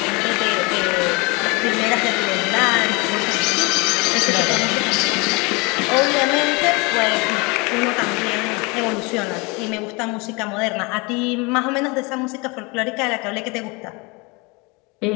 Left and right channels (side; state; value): right; quieter; 27.4 dB